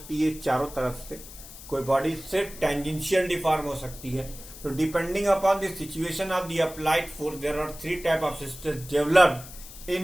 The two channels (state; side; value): noise; left; hiss, 16 dB below the sound